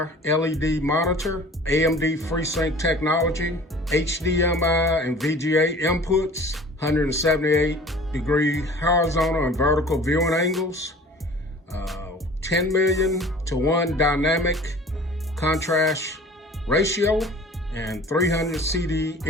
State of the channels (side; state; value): both; normal; correlation 0.45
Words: LED monitor, AMD FreeSync technology, HDMI and VGA inputs, 178-degree horizontal and vertical viewing angles, 10 million to 1 dynamic contrast ratio, and 300